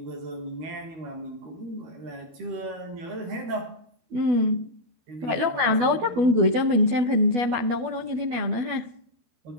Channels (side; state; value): left; late; 12 ms